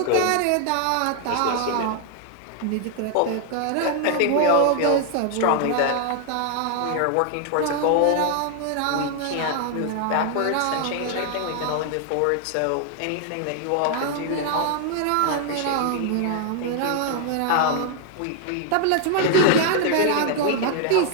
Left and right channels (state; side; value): different; both; correlation 0.00